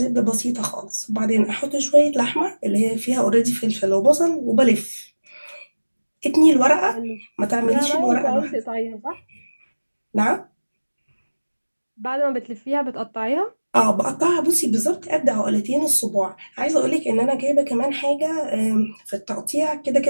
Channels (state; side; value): inverted; both; correlation -1.00